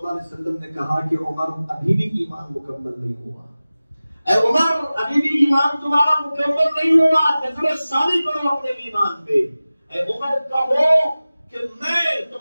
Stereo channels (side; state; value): both; inverted; correlation -0.97